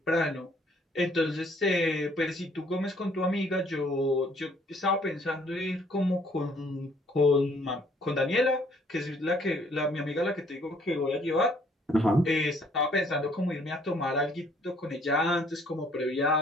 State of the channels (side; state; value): both; normal; correlation 0.62